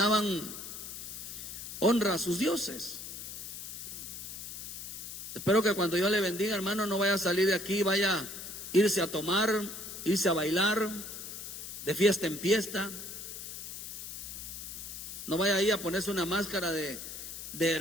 honra a sus dioses. Espero que cuando yo le bendiga, hermano, no vaya a salir de aquí, vaya a irse a tomar, irse a bailar, de fiesta en fiesta. No vaya ahí a ponerse una máscara de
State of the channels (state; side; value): noise; left; hiss, 9 dB below the sound